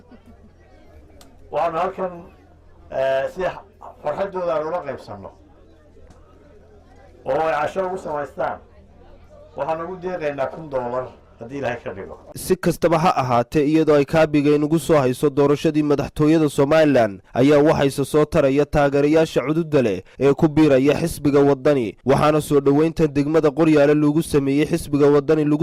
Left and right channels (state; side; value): identical; both; correlation 1.00